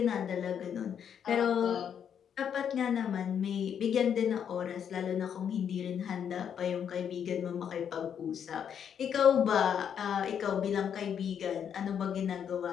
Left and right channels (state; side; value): quieter; right; 8.3 dB